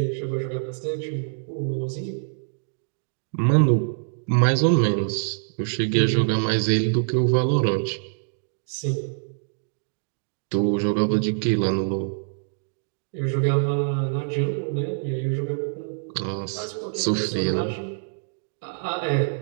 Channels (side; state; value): left; silent; digital silence